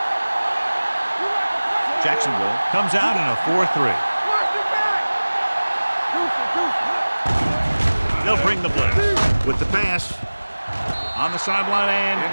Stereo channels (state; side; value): inverted; both; correlation -1.00